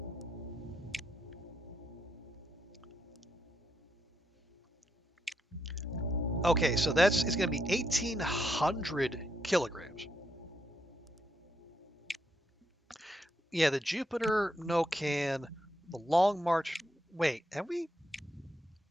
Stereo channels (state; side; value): normal; both; correlation 0.79